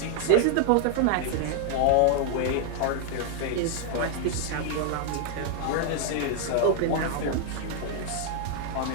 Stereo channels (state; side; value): different; both; correlation 0.00